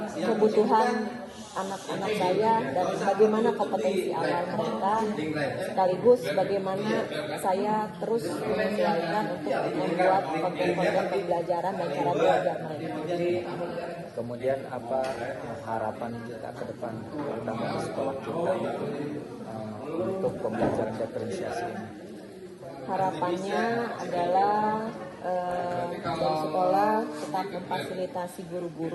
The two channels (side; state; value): both; identical; correlation 1.00